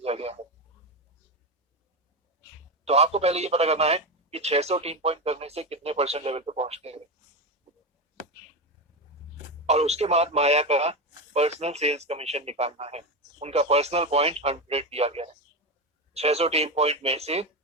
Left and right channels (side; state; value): both; normal; correlation 0.16